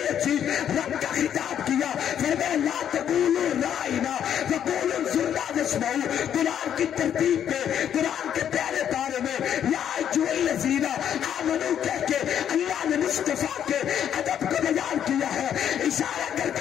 عجیب رب کا خطاب کیا، فرمایا لا تقولوا رائنا وقولوا انظرنا واسمعوا۔ قرآن کی ترتیب پہ قرآن کے پہلے پارے میں یا ایجو الذین آمنوا کہہ کے اللہ نے مصطفیٰ کے ادب کو بیان کیا ہے، اشارہ کر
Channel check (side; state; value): right; quieter; 9.5 dB